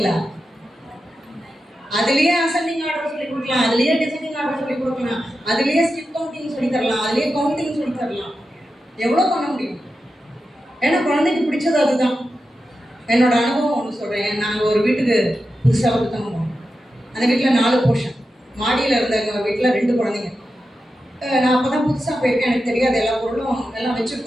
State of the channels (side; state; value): both; normal; correlation 0.90